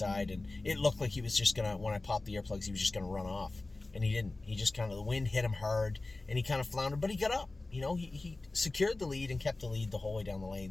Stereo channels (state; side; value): quieter; right; 3.2 dB